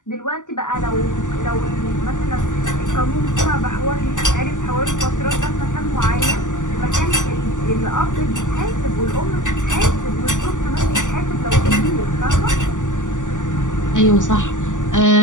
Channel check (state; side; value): late; right; 0.87 ms